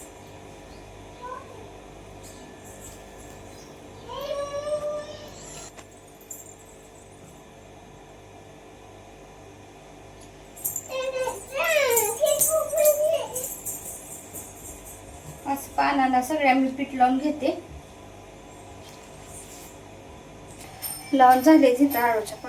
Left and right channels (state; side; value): identical; both; correlation 1.00